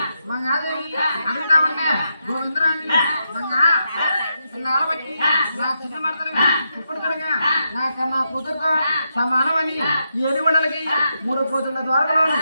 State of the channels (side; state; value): both; inverted; correlation -0.83